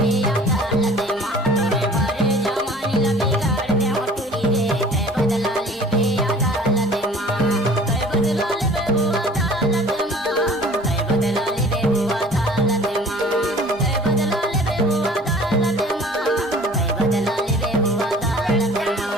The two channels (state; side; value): normal; both; correlation 0.48